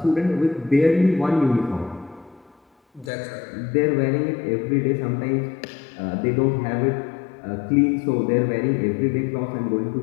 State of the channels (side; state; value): right; drops out; at 3.1 s